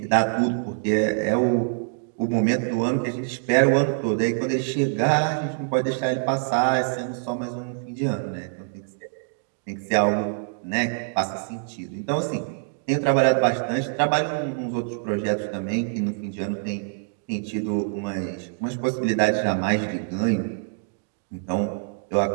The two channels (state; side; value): silent; left; digital silence